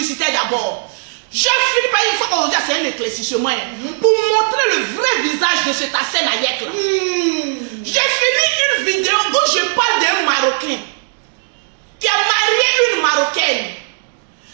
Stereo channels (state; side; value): silent; left; 68 dB below the other